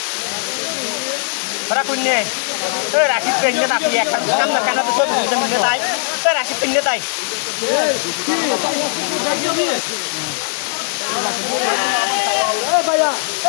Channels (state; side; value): silent; right; digital silence